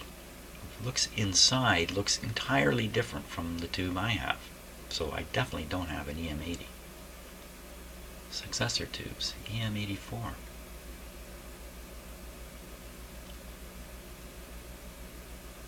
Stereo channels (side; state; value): both; identical; correlation 1.00